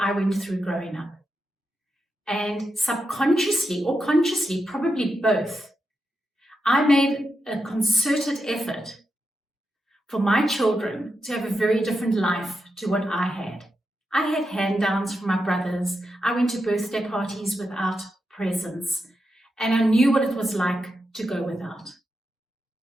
went through growing up. And subconsciously or consciously, probably both, I made a concerted effort for my children to have a very different life to what I had. I had hand-downs from my brothers. I went to birthday parties without presents, and I knew what it was like to go without.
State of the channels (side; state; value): both; normal; correlation 0.87